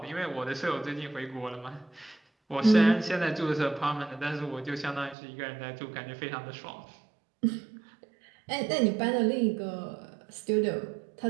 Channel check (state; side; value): drops out; left; at 5.2 s